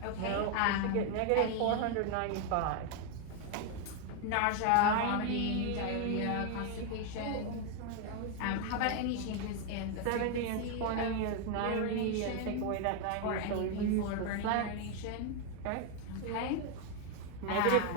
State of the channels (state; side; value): different; both; correlation 0.01